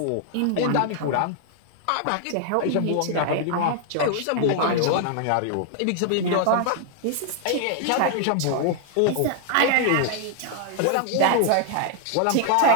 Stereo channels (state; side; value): different; both; correlation -0.01